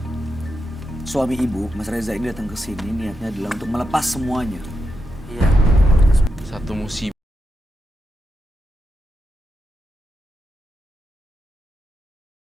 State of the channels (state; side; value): normal; both; correlation 0.86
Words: suami ibu, Mas Reza ini datang ke sini niatnya adalah untuk melepas semuanya. Iya. Satu musibah.